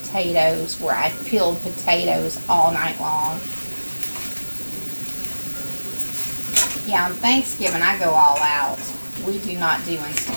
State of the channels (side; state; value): both; inverted; correlation -1.00